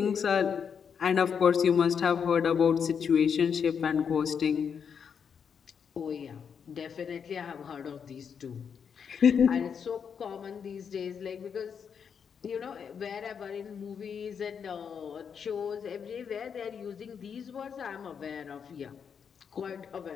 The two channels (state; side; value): quieter; right; 7.0 dB